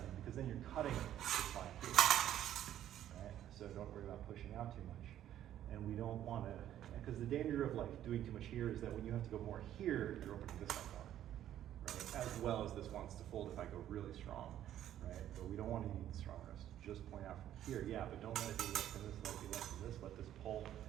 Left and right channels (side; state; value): left; quieter; 11.6 dB